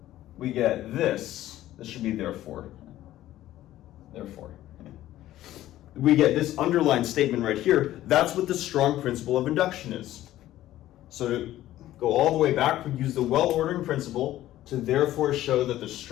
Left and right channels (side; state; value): right; quieter; 14.2 dB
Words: this. This should be therefore. We get this underlined statement right here. That's what the strong principle of induction is. So to go all the way back, we use the well-ordering principle to therefore show that the